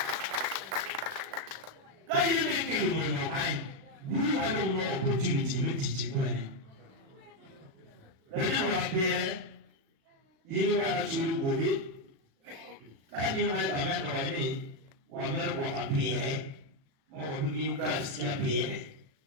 Kaya mekelu mwenye kai. Bulu wado no opportunity metichi kwene. Lati wapere, yini wada churu gobe. Kaya mwaya kamendo wane, wamero kwa kapere. Mawabimi uka sikia pere.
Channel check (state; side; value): late; left; 36 ms